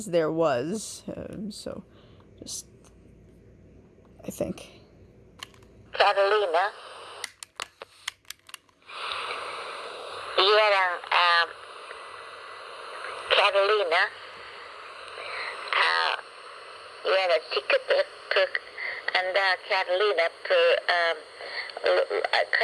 there was, so just, I think. Catalina Yan ang Catalina. Yan ang ticket per anda Catalina per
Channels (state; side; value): identical; both; correlation 1.00